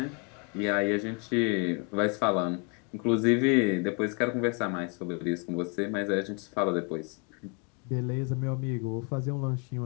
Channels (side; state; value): right; quieter; 34.8 dB